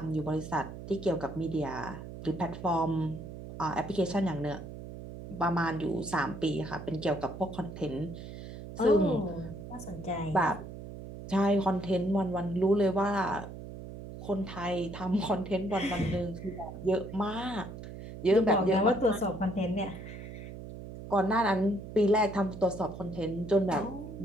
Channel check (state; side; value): noise; right; hum, 11 dB below the sound